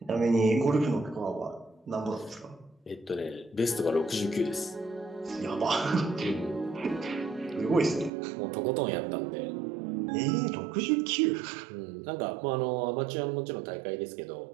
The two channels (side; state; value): left; drops out; at 8.1 s